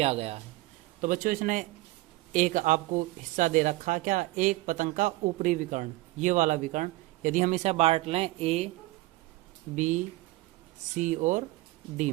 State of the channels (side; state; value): left; quieter; 19.6 dB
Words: गया है। तो बच्चों इसने एक आपको हिस्सा दे रखा, क्या, एक पतंग का ऊपरी विकर्ण, ये वाला विकर्ण, यदि हम इसे बांट लें ए, बी, सी और डी